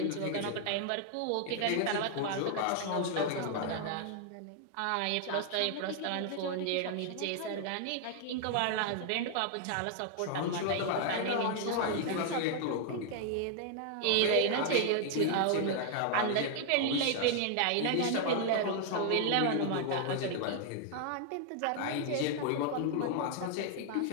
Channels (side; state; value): both; different; correlation 0.00